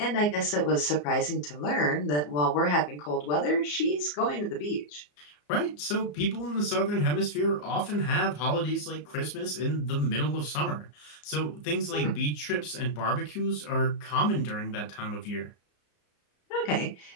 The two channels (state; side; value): late; right; 34 ms